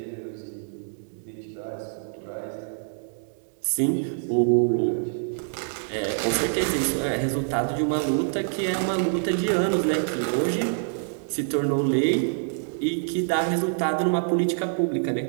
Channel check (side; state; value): left; silent; digital silence